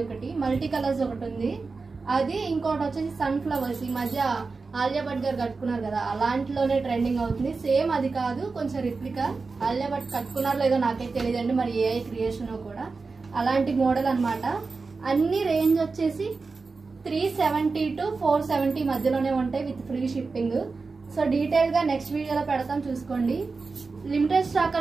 ఒకటి, మల్టీ కలర్స్ ఒకటి ఉంది. అది ఇంకోటి వచ్చేసి సన్ ఫ్లవర్స్. ఈ మధ్య ఆలియా భట్ గారు కట్టుకున్నారు కదా, అలాంటిలోనే ట్రెండింగ్ అవుతుంది. సేమ్ అది కాదు, కొంచెం రిప్లికా. ఆలియా భట్ కట్టుకున్నారో లేదో నాకైతే తెలియదండి, మరి ఏ క్రియేషన్ కూడా అలాంటి మోడల్ అన్నమాట. అన్ని రేంజ్ వచ్చేసి 370 to 470 మధ్యలోనే ఉంటాయి with free shipping. So detail గా నెక్స్ట్ వీడియోలో పెడతాం, చూసుకోండి. లిమిటెడ్ స్టాక్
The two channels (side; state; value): left; quieter; 4.2 dB